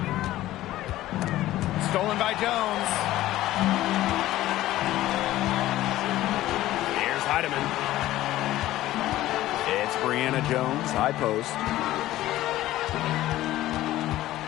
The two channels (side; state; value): right; quieter; 15.2 dB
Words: Stolen by Jones. Here's Heidemann. It's Brianna Jones, high post.